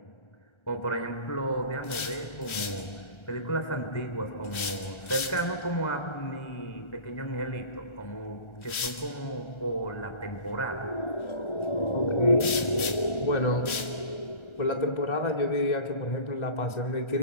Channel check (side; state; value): right; late; 1.3 ms